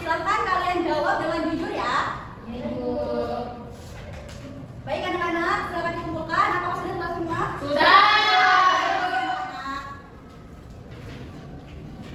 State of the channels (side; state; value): both; identical; correlation 1.00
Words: silakan kalian jawab dengan jujur ya. Ibu. Baik anak-anak, silakan dikumpulkan. Apakah sudah selesai semua? Sudah.